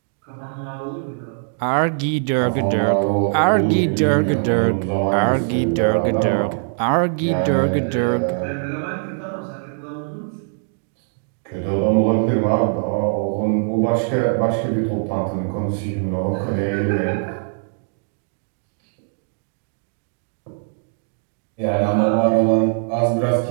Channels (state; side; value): silent; left; digital silence